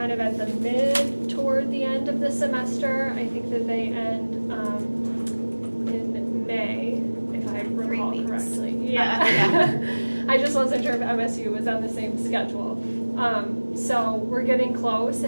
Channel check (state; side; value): inverted; both; correlation -1.00